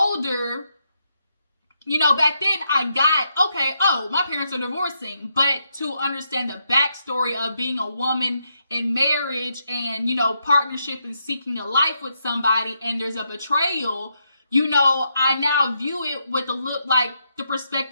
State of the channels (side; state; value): both; inverted; correlation -0.80